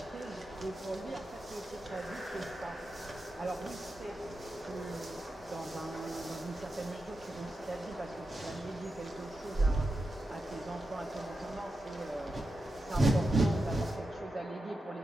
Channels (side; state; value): both; normal; correlation 0.89